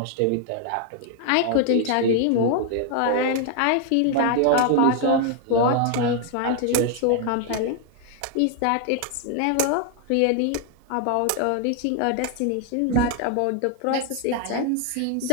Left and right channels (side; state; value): both; different; correlation 0.00